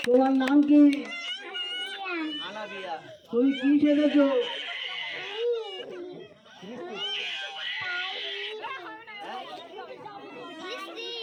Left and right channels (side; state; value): both; identical; correlation 1.00